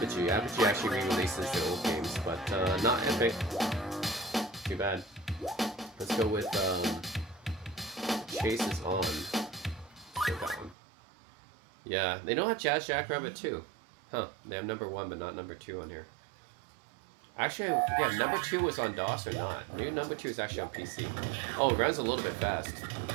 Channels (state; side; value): drops out; left; at 10.8 s